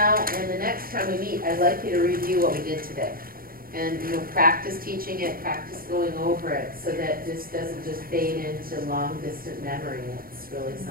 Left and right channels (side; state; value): left; late; 0.42 ms